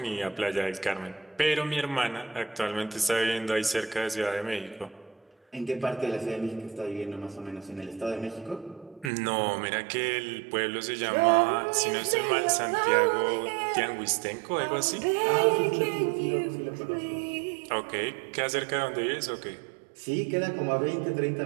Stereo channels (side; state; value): left; drops out; at 9.1 s